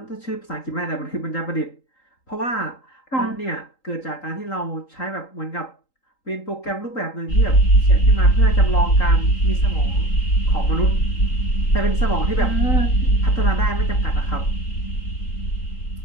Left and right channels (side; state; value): right; late; 3.8 ms